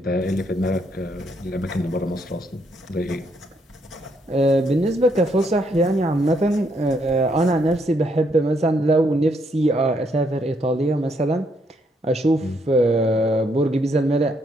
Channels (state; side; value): normal; both; correlation 0.73